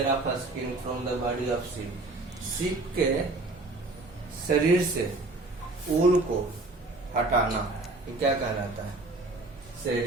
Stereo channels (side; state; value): left; quieter; 3.0 dB